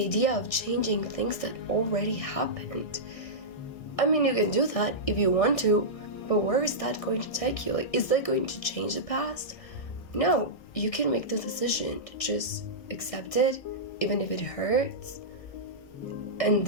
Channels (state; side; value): late; right; 1.6 ms